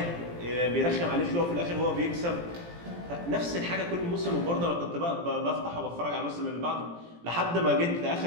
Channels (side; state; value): left; late; 17 ms